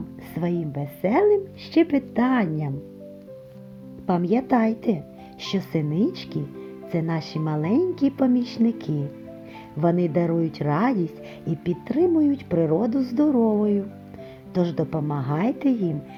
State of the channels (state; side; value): identical; both; correlation 1.00